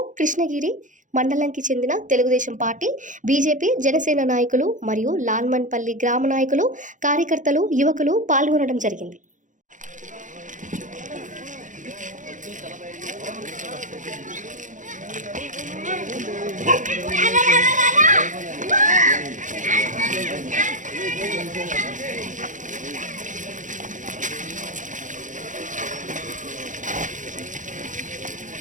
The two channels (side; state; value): left; late; 0.37 ms